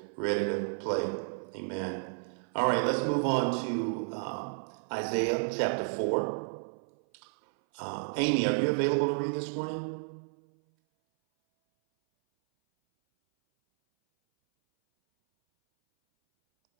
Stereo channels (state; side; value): silent; left; 57 dB below the other